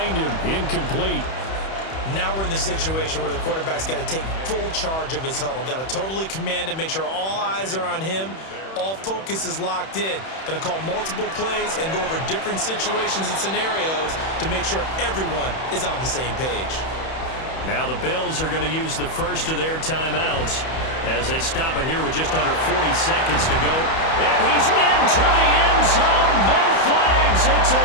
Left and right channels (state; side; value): late; right; 31 ms